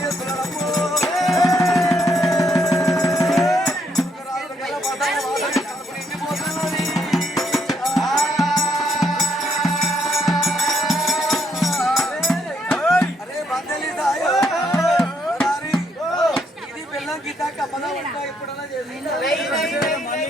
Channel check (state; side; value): normal; both; correlation 0.73